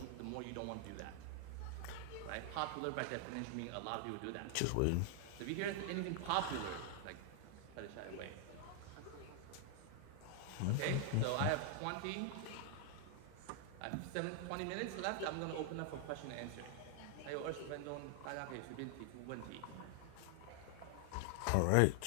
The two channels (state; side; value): different; both; correlation 0.00